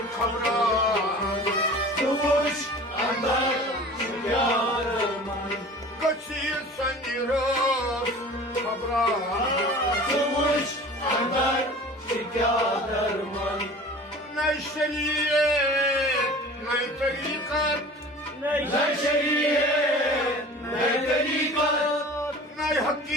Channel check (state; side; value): normal; both; correlation 0.41